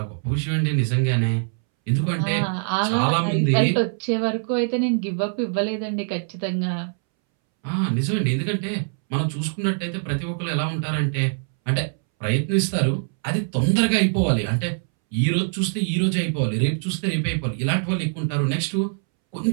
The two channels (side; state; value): left; silent; 63 dB below the other